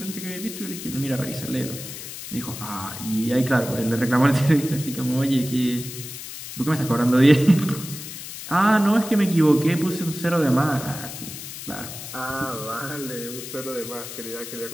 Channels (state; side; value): noise; left; hiss, 10 dB below the sound